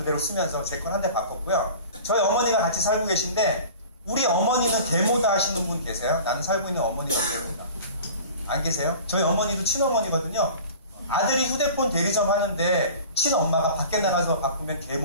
쓰면서 제 건 한 대 바꿨고요. 저희 어머니가 같이 살고 계신데 우리 어머니는 계모다 하시는 분 계세요? 나는 살고 있는 어머니가 계모다. 안 계세요? 저희 어머니도 친어머니거든요. 아들이 휴대폰 대리점 하는데 친엄마가 밖에 나가서 바꾸면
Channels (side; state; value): both; inverted; correlation -0.41